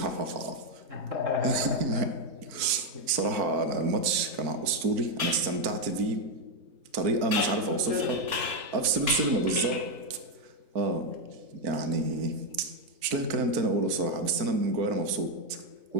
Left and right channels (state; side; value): late; left; 4.4 ms